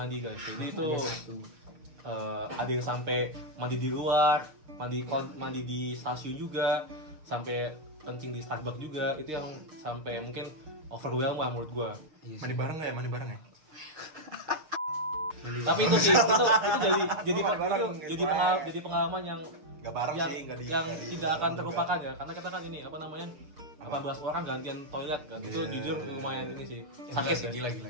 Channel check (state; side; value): late; left; 6.6 ms